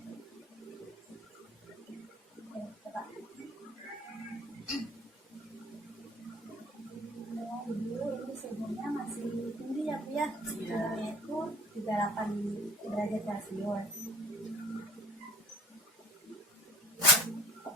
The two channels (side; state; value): both; normal; correlation 0.50